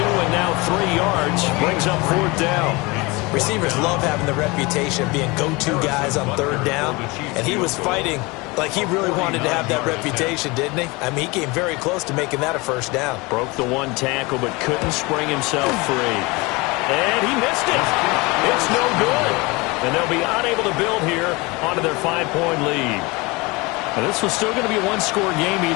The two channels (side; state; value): right; quieter; 24.9 dB